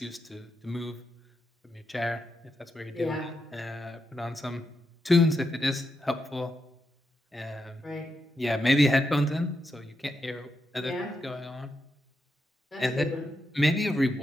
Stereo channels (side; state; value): both; normal; correlation 0.84